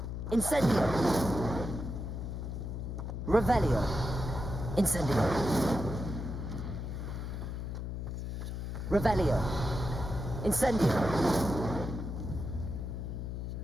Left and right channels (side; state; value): left; noise; hum, 5 dB below the sound